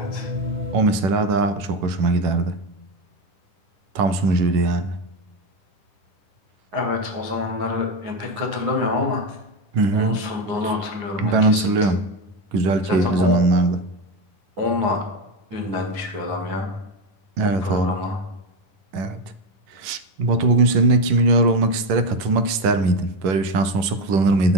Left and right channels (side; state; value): left; late; 11 ms